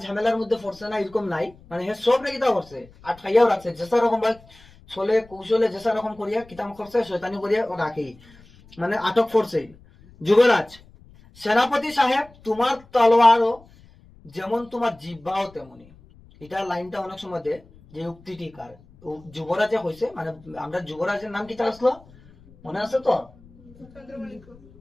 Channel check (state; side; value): noise; left; rumble, 25 dB below the sound